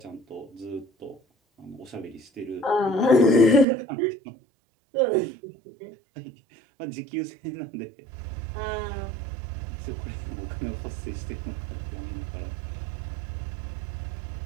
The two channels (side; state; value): left; drops out; at 3.7 s